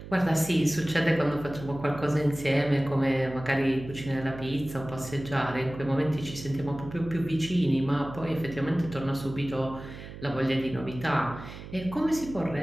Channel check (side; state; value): right; noise; hum, 13 dB below the sound